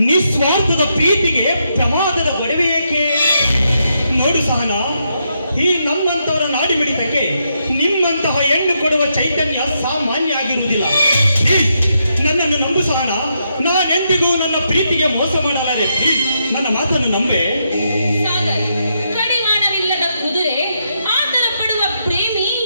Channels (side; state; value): both; inverted; correlation -0.80